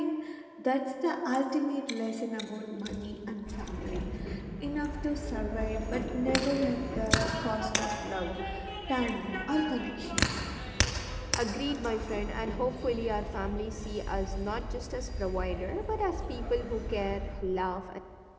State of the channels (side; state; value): both; identical; correlation 1.00